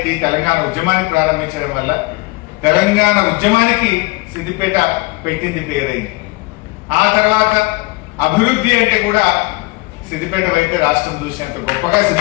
తెలంగాణ ఉద్యమాన్ని ప్రారంభించడం వల్ల తెలంగాణ ఉద్యమానికి సిద్దిపేట పెట్టింది పేరైంది. ఆ తర్వాత అభివృద్ధి అంటే కూడా సిద్దిపేట వైపే రాష్ట్రం చూసినంత గొప్పగా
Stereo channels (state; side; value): quieter; right; 24.2 dB